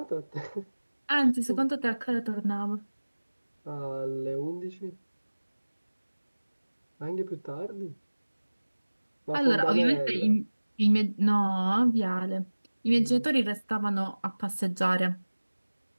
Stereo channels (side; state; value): both; inverted; correlation -1.00